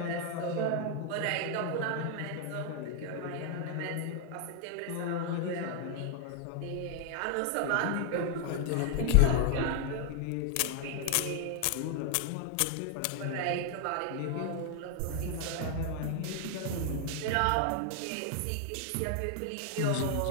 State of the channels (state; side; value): different; both; correlation 0.00